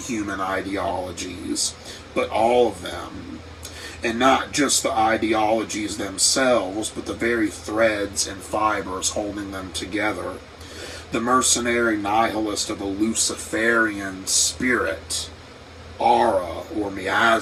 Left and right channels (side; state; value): both; identical; correlation 1.00